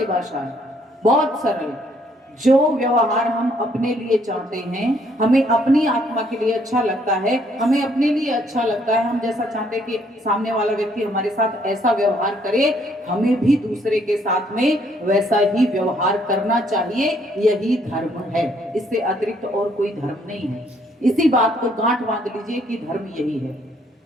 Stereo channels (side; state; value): both; normal; correlation 0.67